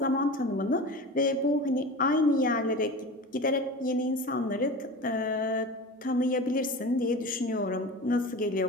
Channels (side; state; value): both; normal; correlation 0.32